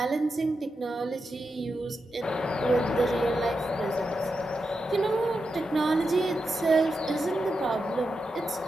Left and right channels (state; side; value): normal; both; correlation 0.88